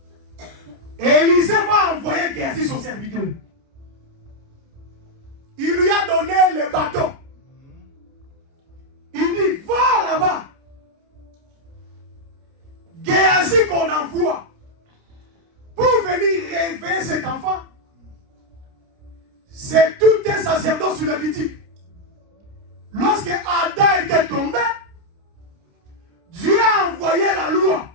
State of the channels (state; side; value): late; left; 29 ms